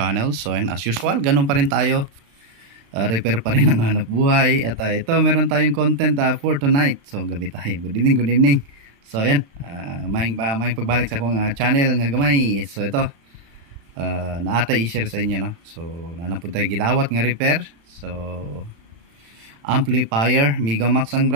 So ayan, as usual, ganun pa rin tayo, repair pa rin ang hanap buhay. At ito, meron tayong content for tonight. So gabi tayo, good evening. So ayan, maing pagbalik sa akong channel nga gamay. So ito, naatay i-share sa inyo, no? So nanapod tayo gidawat nga repair. So amplifier, Megamax ang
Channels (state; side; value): late; left; 35 ms